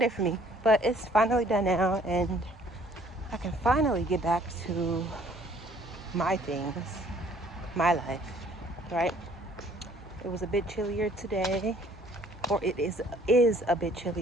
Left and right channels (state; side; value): normal; both; correlation 0.58